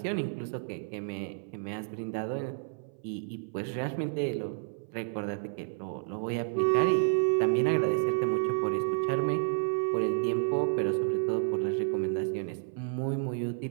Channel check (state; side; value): silent; left; 57 dB below the other